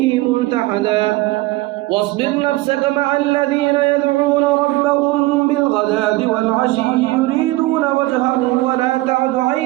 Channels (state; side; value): quieter; left; 19.5 dB